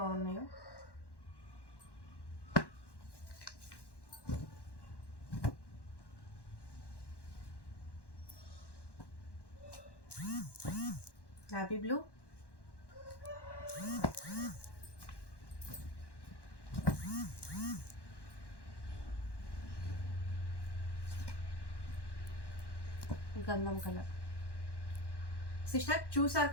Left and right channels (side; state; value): right; late; 1.1 ms